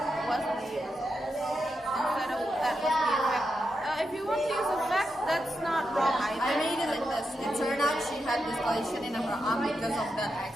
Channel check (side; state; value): both; normal; correlation 0.86